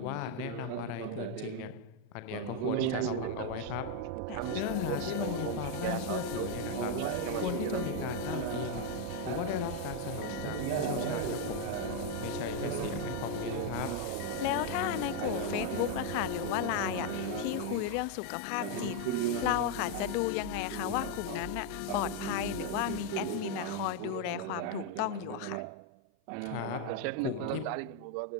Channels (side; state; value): both; different; correlation 0.01